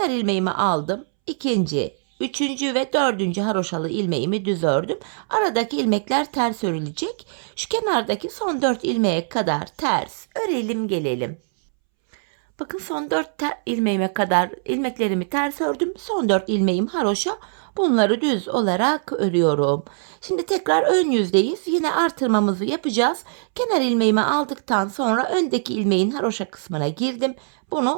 ilmeğimi aldım. İkinci, üçüncü ve dördüncü haroşalı ilmeğimi düz ördüm. Aradaki ilmekler ters örülecek. Şu kenardaki son 4 ilmeğe kadar ters örelim gelelim. Bakın son 4 ilmeğime kadar ilmeklerimi ters ördüm. Son 4 ilmeğim haroşa. Bunları düz olarak örüyorum. Şimdi tekrar ön yüzdeyiz. Yine artırmamızı yapacağız. Kenar ilmeğimi aldıktan sonra öndeki ilmeğin haroşa kısmına girdim.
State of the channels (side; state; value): left; silent; 64 dB below the other